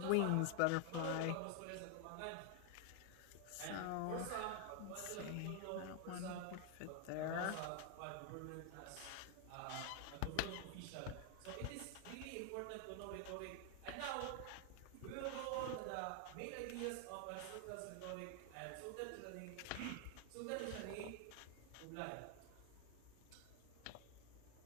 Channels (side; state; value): both; different; correlation 0.00